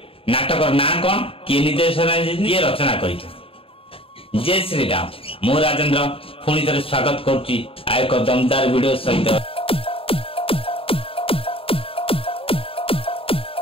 नाटक ना कौन किए निर्देशना किए रचना कर। जय श्री राम मु राजेंद्र पुणी थे स्वागत करुच्ची आ एक दमदार वीडियो सहित।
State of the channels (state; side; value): late; right; 0.27 ms